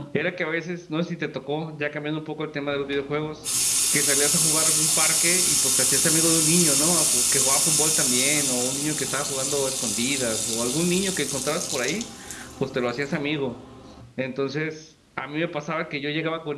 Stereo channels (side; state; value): both; identical; correlation 1.00